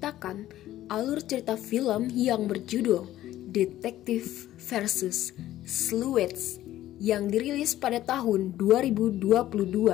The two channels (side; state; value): right; quieter; 13.8 dB